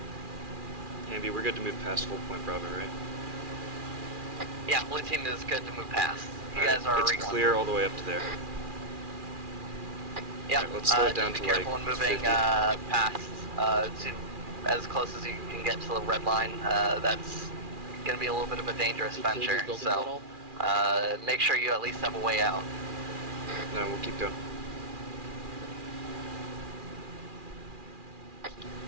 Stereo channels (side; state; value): left; late; 2.4 ms